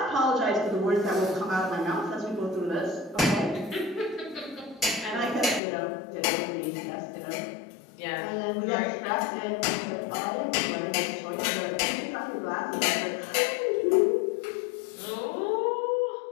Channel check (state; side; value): drops out; right; at 5.6 s